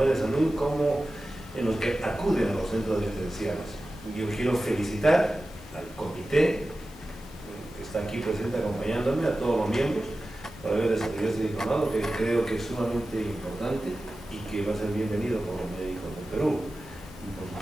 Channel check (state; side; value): noise; right; hiss, 28 dB below the sound